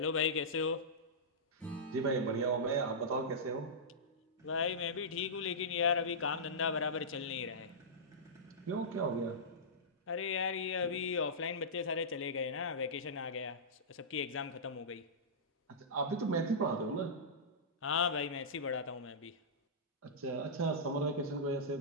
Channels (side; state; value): both; normal; correlation -0.16